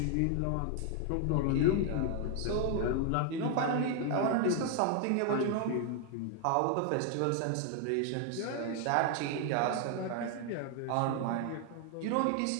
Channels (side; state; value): both; different; correlation 0.00